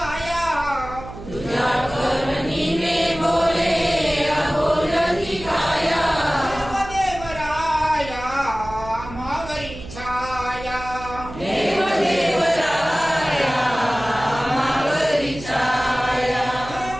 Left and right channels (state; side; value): noise; right; hum, 13 dB below the sound